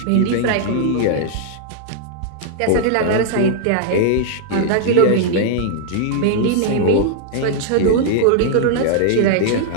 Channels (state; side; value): different; both; correlation 0.00